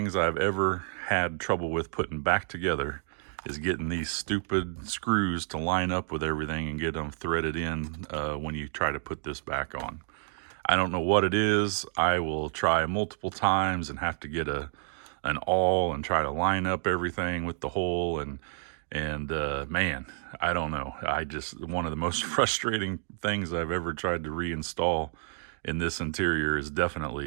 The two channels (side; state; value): left; silent; digital silence